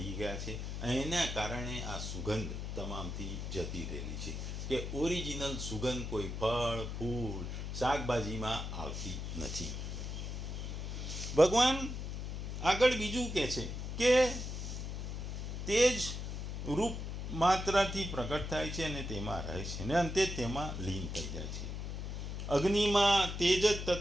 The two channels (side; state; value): left; noise; hum, 5 dB below the sound